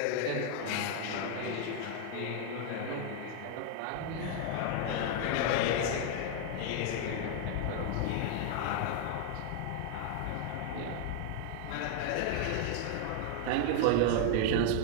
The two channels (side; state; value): both; different; correlation 0.00